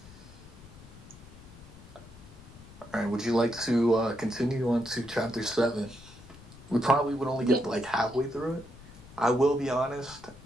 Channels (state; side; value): noise; left; rumble, 19 dB below the sound